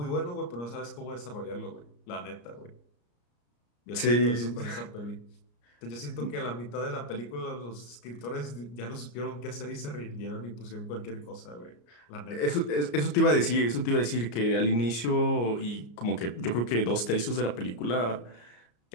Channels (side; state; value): right; late; 34 ms